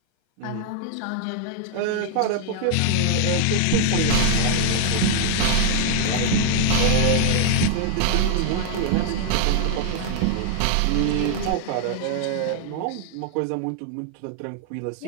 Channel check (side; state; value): both; different; correlation 0.00